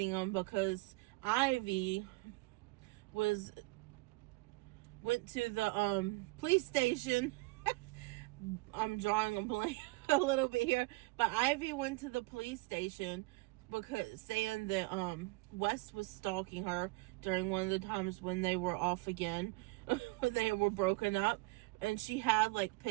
them because Ivy went to the police station. I'm drawing a blank a little bit here, but Ivy went to the police station because saying that Wes was stalking her during one of the times when they were off again. They were broken up, and she had like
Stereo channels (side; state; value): left; quieter; 25.2 dB